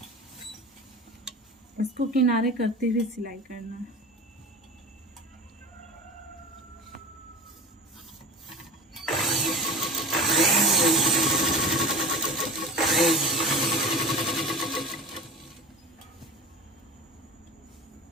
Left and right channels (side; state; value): both; normal; correlation 0.32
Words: इसको किनारे करते हुए सिलाई करना है।